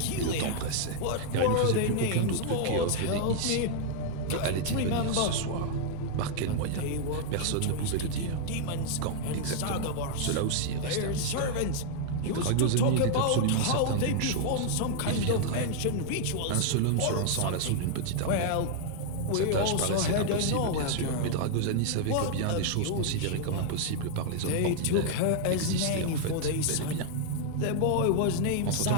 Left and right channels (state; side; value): different; both; correlation 0.00